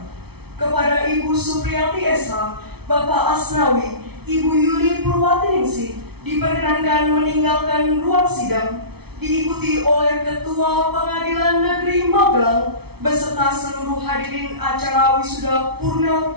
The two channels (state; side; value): late; left; 0.97 ms